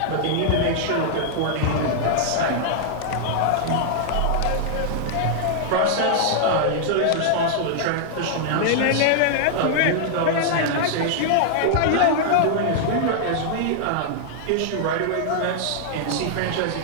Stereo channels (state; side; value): different; both; correlation -0.01